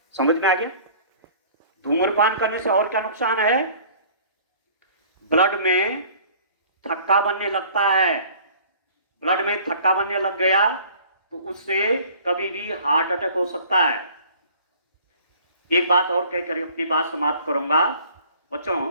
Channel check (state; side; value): inverted; both; correlation -0.51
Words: समझ में आ गया? धूम्रपान करने से और क्या नुकसान है? ब्लड में थक्का बनने लगता है। ब्लड में थक्का बनने लग गया तो उससे कभी भी हार्ट अटैक हो सकता है। एक बात और कहकर अपनी बात समाप्त करूंगा।